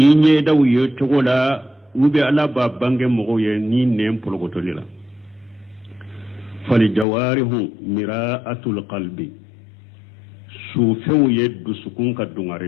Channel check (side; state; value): right; drops out; at 7.1 s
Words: ɲɛdaw ye cogo la u bɛ ala b'a bange mɔgɔw ye ni nɛn polokotori la falijawarihu mira'atul qalbi sufɛnw ye dusukun ka